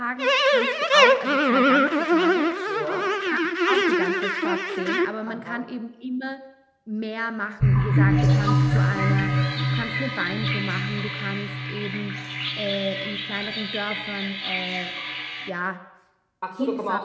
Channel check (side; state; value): both; identical; correlation 1.00